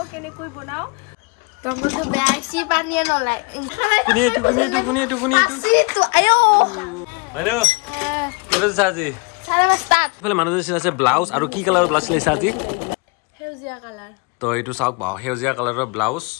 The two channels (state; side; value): quieter; right; 31.0 dB